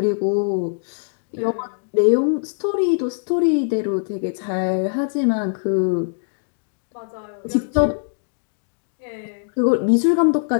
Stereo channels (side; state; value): right; silent; digital silence